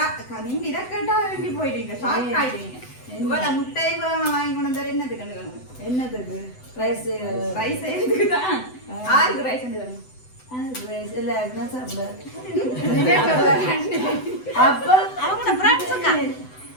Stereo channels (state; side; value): late; right; 7.9 ms